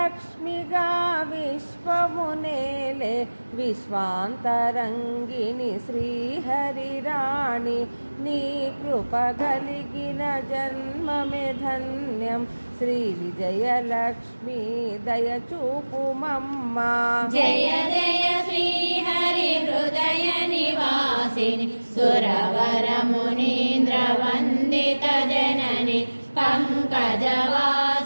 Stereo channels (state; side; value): inverted; both; correlation -1.00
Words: విశ్వమునేలే విశ్వాంతరంగిణి శ్రీహరిరాణి నీ కృప కలిగిన జన్మమే ధన్యం శ్రీ విజయలక్ష్మి దయచూపుమమ్మా. జయ జయ శ్రీ హరి హృదయ నివాసిని సురవర మునీంద్ర వందిత జనని పంకజవాసిని